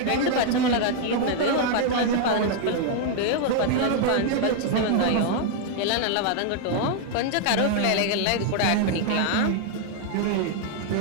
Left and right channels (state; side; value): different; both; correlation 0.00